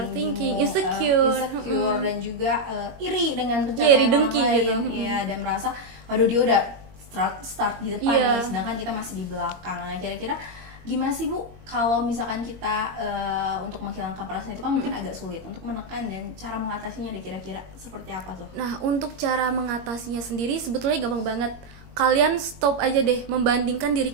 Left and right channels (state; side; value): late; left; 21 ms